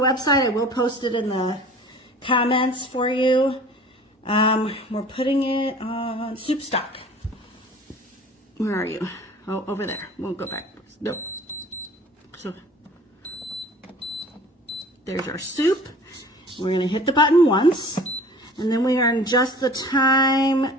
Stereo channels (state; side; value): normal; both; correlation 0.46